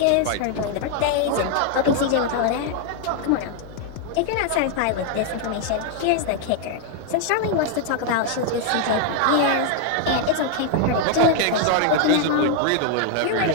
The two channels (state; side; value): different; both; correlation 0.00